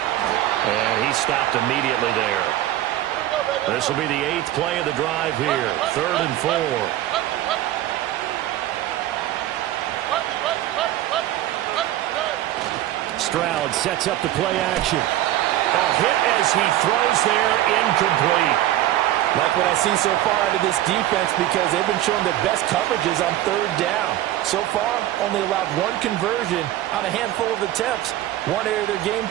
he stopped immediately there. This will be the 8th play of the drive here. 3rd and 4. Stroud sets up the play action. A hit as he throws there, incomplete. like what I see so far out of this defense, because they've been showing their best coverages on 3rd down. So far, only allowed 1 conversion on a handful of attempts. One area of their game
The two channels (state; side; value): quieter; left; 13.9 dB